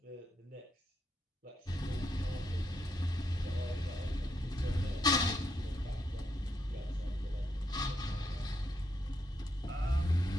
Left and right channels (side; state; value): both; normal; correlation 0.79